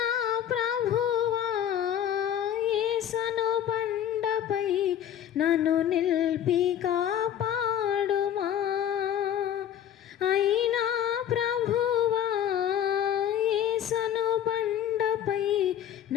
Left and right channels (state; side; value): quieter; right; 10.1 dB